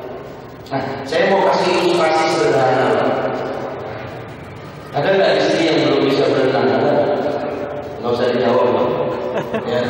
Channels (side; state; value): both; identical; correlation 1.00